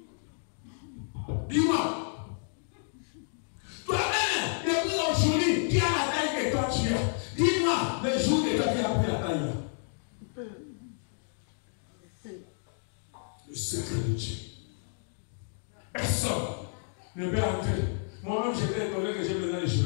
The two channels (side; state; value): right; silent; digital silence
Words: Dis-moi. Toi-même, depuis aujourd'hui, qui a la taille que toi tu as? Dis-moi le jour que toi tu as pris la taille. Le secret de Dieu. Personne ne peut entrer. Moi-même, j'étais étonné que j'ai besoin de